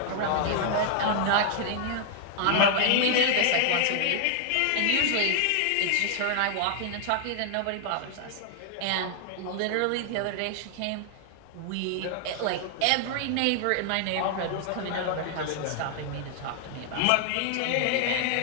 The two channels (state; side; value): different; both; correlation 0.00